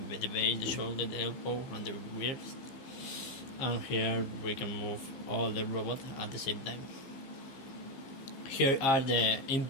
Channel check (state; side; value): late; right; 15 ms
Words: the base, the shoulder, the elbow, and the wrist. And here we can move all the robot at the same time. Here are the